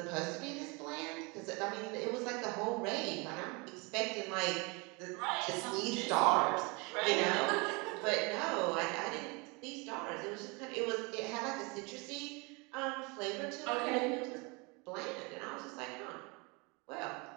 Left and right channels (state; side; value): quieter; left; 28.8 dB